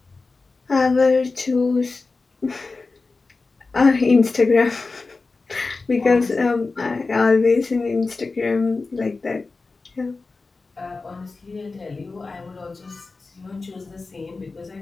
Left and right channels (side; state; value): right; quieter; 3.9 dB